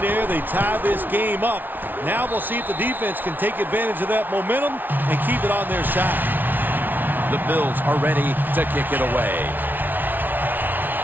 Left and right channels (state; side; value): late; left; 0.088 ms